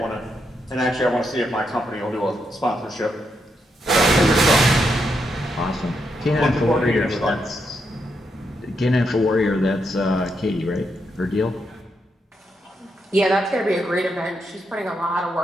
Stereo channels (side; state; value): both; normal; correlation 0.81